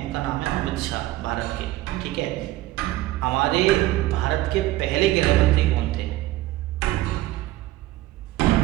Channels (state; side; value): quieter; left; 16.7 dB